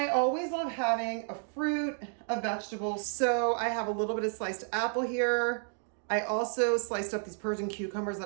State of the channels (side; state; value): left; silent; 57 dB below the other